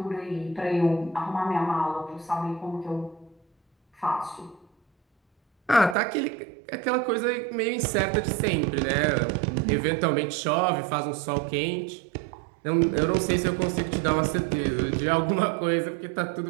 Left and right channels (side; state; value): left; drops out; at 6.0 s